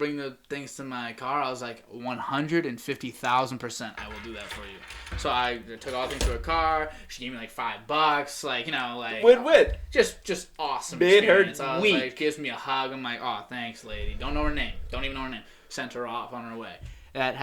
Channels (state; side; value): identical; both; correlation 1.00